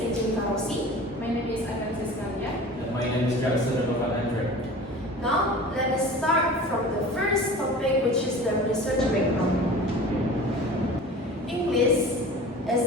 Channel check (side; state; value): both; normal; correlation 0.39